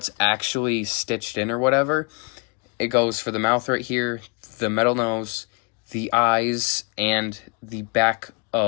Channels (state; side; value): quieter; right; 32.6 dB